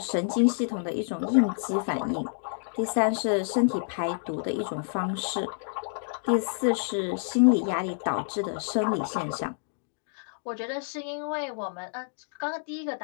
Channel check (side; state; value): right; silent; digital silence